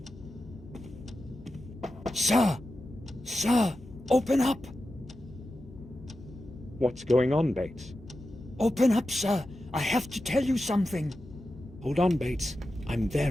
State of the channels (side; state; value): both; normal; correlation 0.91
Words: Sir! Sir! Open up! What's going on, Bates? Open up, sir! I have to tell you something. Hold on, Bates. I'm